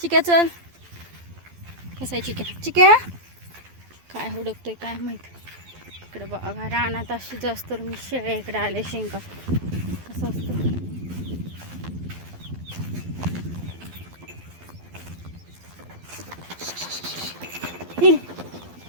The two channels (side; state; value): left; late; 12 ms